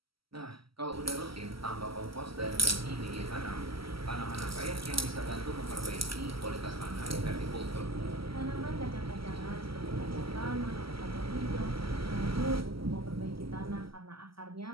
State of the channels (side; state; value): left; late; 0.75 ms